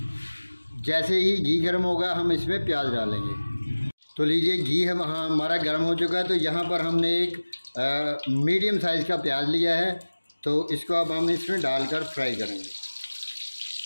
जैसे ही घी गर्म होगा हम इसमें प्याज डालेंगे। तो लीजिए घी हमारा गर्म हो चुका है। तो यहाँ पर हमने एक मीडियम साइज़ का प्याज लिया है। तो इसको अब हम इसमें डालकर फ्राई करेंगे।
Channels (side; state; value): both; inverted; correlation -1.00